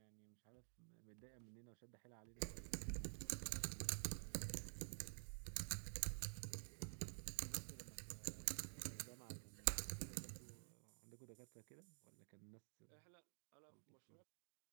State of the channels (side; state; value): left; silent; digital silence